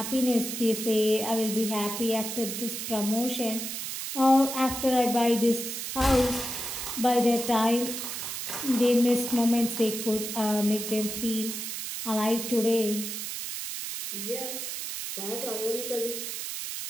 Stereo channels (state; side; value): noise; right; hiss, 5 dB below the sound